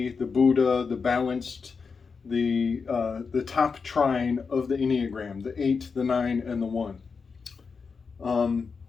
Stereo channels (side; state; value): right; quieter; 5.2 dB